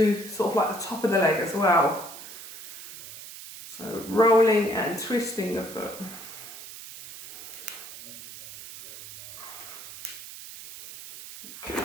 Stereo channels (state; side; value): noise; right; hiss, 12 dB below the sound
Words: sort of like the top of the leg as well. So rolling and twisting the foot. Okay.